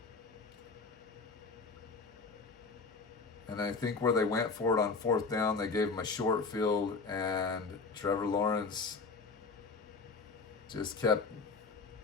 And I think where they went for it on fourth down, they gave him a short field, and Trevor Lawrence just kept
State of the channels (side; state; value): right; quieter; 4.4 dB